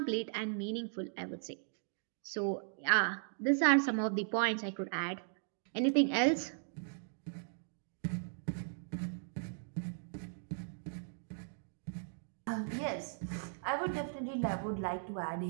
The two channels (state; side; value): silent; left; digital silence